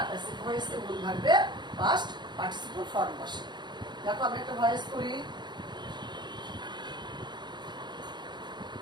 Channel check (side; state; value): left; late; 0.21 ms